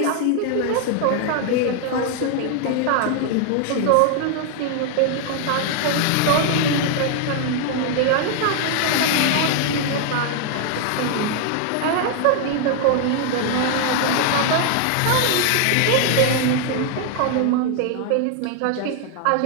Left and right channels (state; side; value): different; both; correlation 0.00